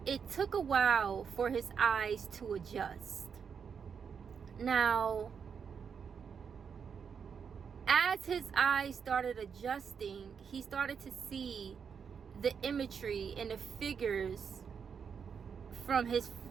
it took a while for his eyes to adjust. Now, as his eyes started adjusting, he started to see the imagery and the figures from his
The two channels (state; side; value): quieter; left; 6.7 dB